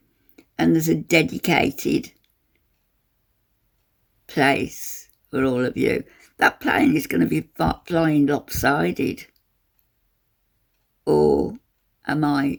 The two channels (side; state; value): both; identical; correlation 1.00